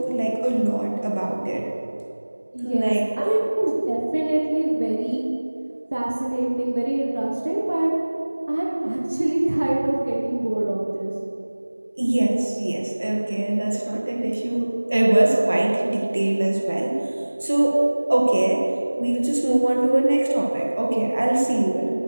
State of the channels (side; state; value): both; inverted; correlation -1.00